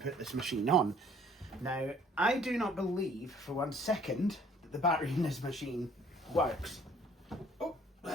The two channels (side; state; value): both; normal; correlation 0.57